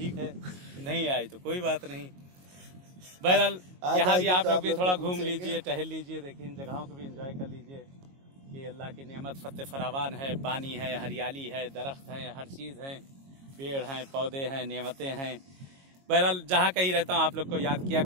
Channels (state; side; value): late; left; 22 ms